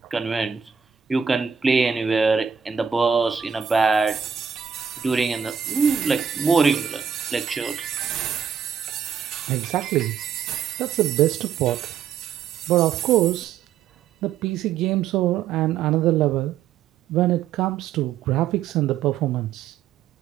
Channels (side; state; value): left; quieter; 7.5 dB